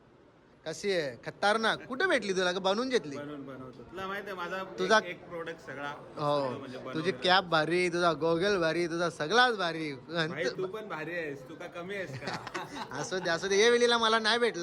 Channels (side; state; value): both; identical; correlation 1.00